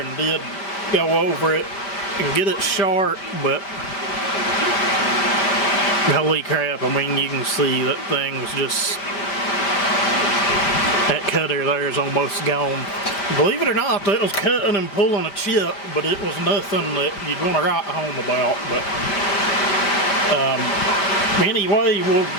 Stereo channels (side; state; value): right; late; 5.1 ms